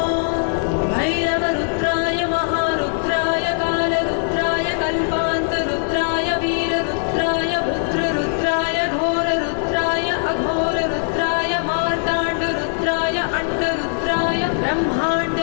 भैरवरुद्राय महारुद्राय कालरुद्राय कल्पान्तरुद्राय वीररुद्राय रुद्ररुद्राय घोररुद्राय अघोररुद्राय मार्ताण्डरुद्राय अण्डरुद्राय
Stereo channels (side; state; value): right; silent; 65 dB below the other